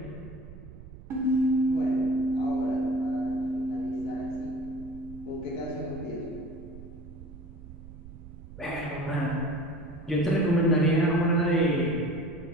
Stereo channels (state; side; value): noise; right; rumble, 16 dB below the sound